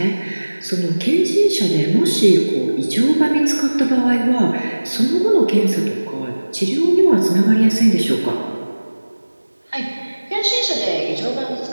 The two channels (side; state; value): both; inverted; correlation -1.00